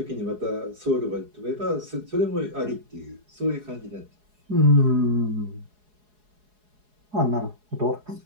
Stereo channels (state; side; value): late; left; 4.8 ms